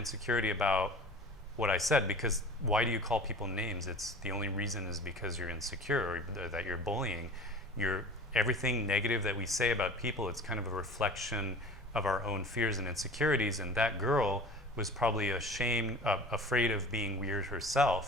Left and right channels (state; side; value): normal; both; correlation 0.40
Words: about what I said, because why do you call people names? It's the only reason is because you're insecure or that you're bullying. Everything negative that we say about people, it's kind of a reflection of our own fears and insecurities. And that girl was probably afraid of being weird